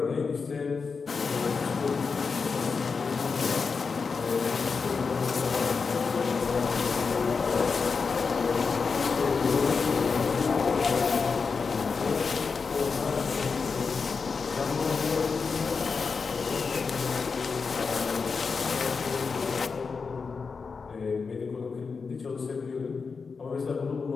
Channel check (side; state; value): right; quieter; 5.1 dB